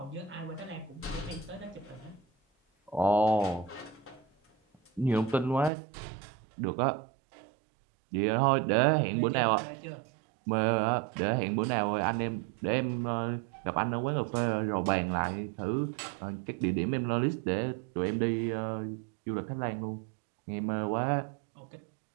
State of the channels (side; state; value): left; drops out; at 5.7 s